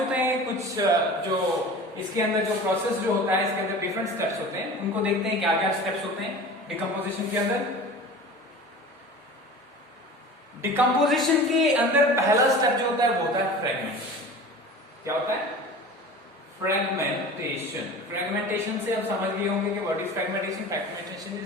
हैं, कुछ जो इसके अंदर जो प्रोसेस जो होता है, इसके अंदर डिफरेंट स्टेप्स होते हैं, उनको देखते हैं क्या क्या स्टेप्स होते हैं डिकम्पोजिशन के अंदर। डिकम्पोजिशन के अंदर पहला स्टेप जो होता है वो होता है फ्रेगमेंटेशन। क्या होता है? फ्रेगमेंटेशन। फ्रेगमेंटेशन से आप समझ गए होंगे कि what is fragmentation. Fragmentation is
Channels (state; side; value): normal; both; correlation 0.37